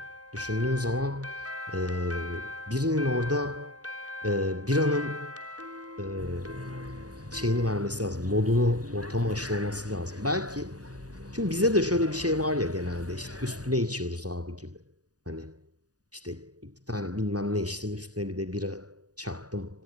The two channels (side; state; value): left; late; 0.68 ms